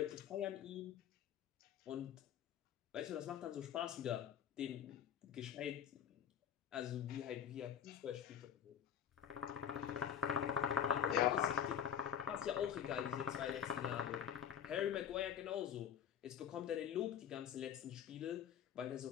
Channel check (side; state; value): right; quieter; 9.1 dB